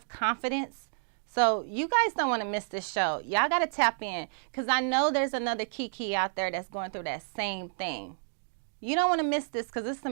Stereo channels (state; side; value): silent; left; digital silence